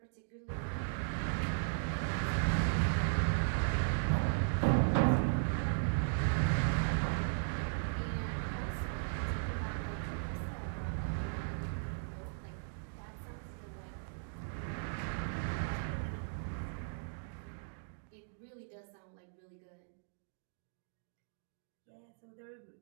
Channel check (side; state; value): left; silent; digital silence